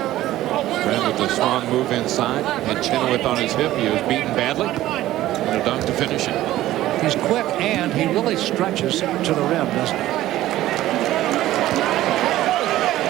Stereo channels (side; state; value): left; quieter; 14.8 dB